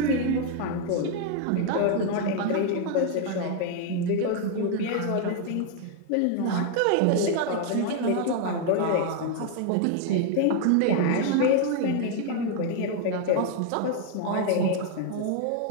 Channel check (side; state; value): both; different; correlation 0.00